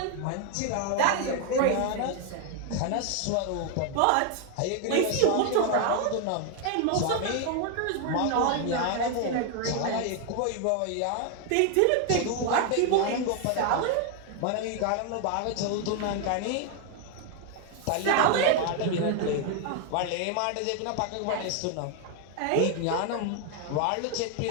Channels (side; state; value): both; different; correlation 0.01